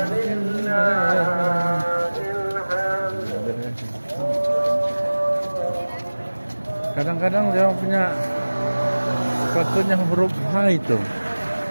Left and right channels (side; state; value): both; inverted; correlation -1.00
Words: Kadang-kadang dia punya sepatunya huruf H itu,